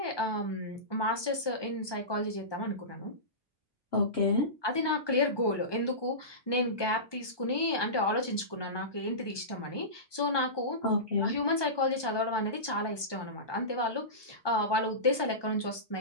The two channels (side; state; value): right; late; 1.2 ms